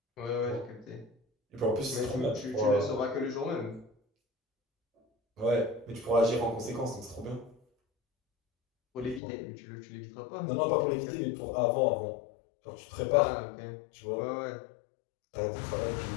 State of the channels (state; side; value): drops out; right; at 9.2 s